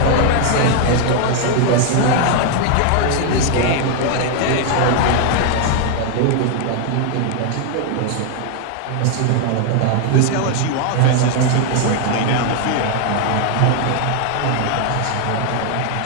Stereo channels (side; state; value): both; different; correlation 0.00